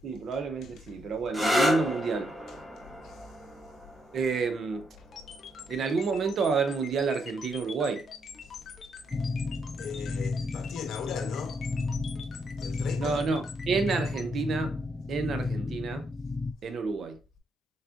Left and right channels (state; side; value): normal; both; correlation 0.78